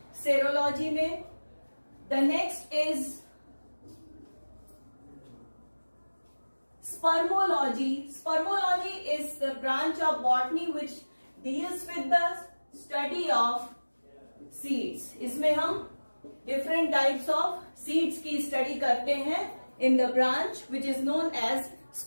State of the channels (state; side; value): inverted; both; correlation -1.00